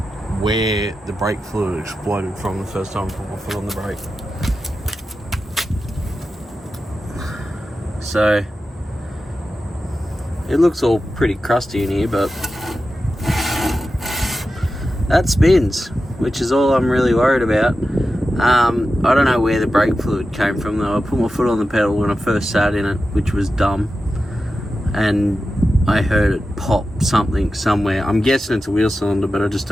where the brake fluid exploded from the first time I put my foot on the brake. So it looks all pretty crusty in here, but that spins, which is all I'm really worried about. I don't know where the brake fluid came from though. I put my foot on the pedal when I first sat in it, which was dumb, and I heard it pop something somewhere. I'm guessing it's a wheel cylinder, but I just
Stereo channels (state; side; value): normal; both; correlation 0.92